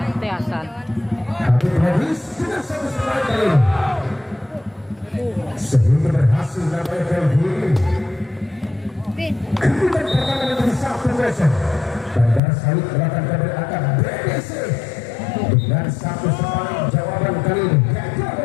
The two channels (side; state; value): right; drops out; at 12.4 s